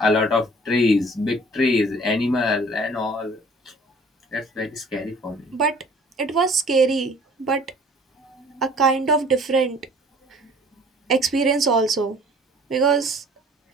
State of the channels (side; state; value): both; normal; correlation 0.52